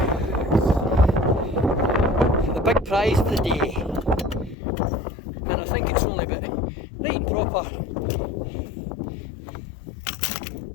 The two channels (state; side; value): drops out; right; at 4.5 s